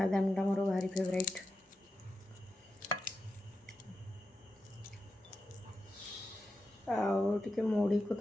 ମୋର ଭାରି ଫେଭରାଇଟ୍ ଆଉ ଟିକେ ମୁଢ଼ିକୁ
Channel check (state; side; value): normal; both; correlation 0.89